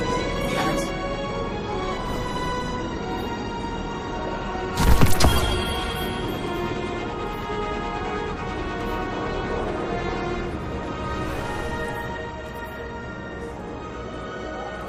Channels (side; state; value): both; identical; correlation 1.00